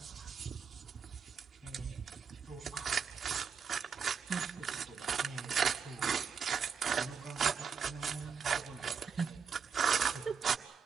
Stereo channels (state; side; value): quieter; left; 6.4 dB